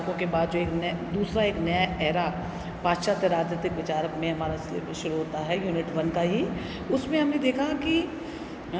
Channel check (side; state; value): both; identical; correlation 1.00